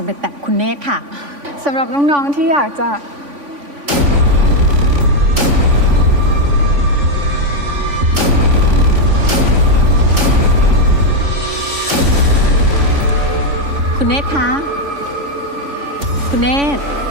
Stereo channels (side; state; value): left; late; 3.5 ms